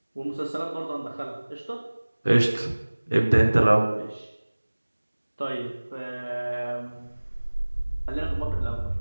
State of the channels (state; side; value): inverted; both; correlation -1.00